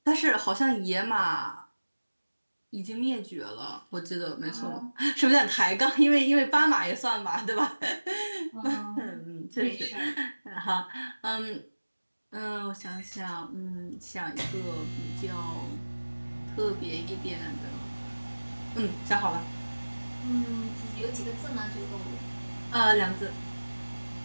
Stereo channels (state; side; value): inverted; both; correlation -1.00